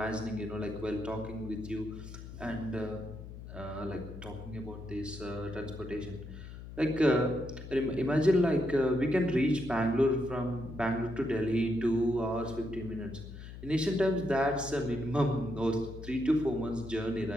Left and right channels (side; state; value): left; noise; hum, 12 dB below the sound